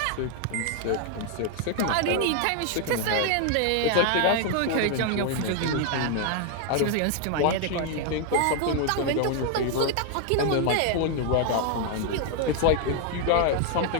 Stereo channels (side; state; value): both; different; correlation 0.00